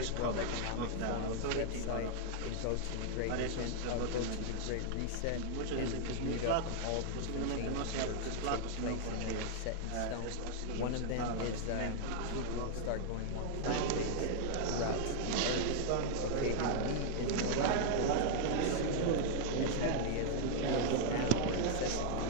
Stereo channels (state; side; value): different; both; correlation 0.00